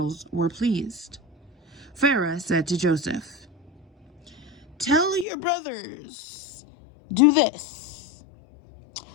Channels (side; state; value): right; drops out; at 5.2 s